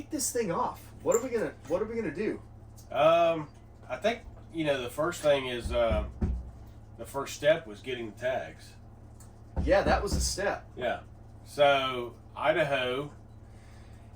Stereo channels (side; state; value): both; identical; correlation 1.00